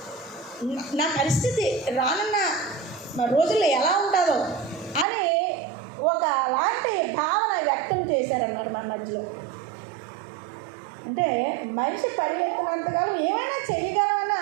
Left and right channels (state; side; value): drops out; left; at 5.1 s